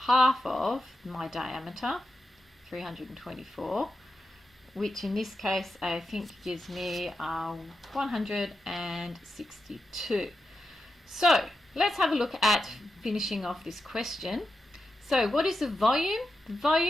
of my diameter, 324, which in this case I think gives me 162. So let's have a look at finishing off this question. So what is the volume? The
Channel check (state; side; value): normal; both; correlation 0.88